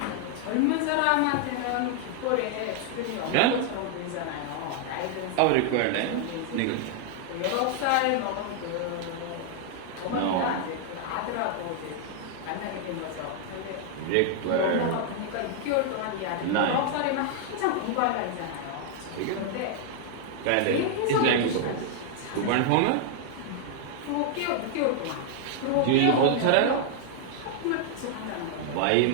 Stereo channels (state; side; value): different; both; correlation 0.00